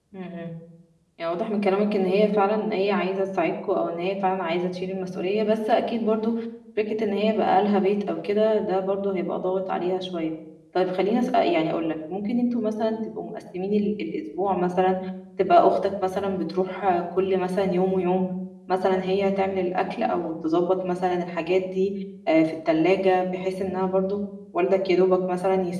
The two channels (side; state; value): both; identical; correlation 1.00